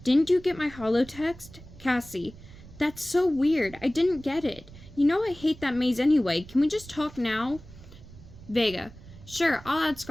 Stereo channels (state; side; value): noise; right; rumble, 18 dB below the sound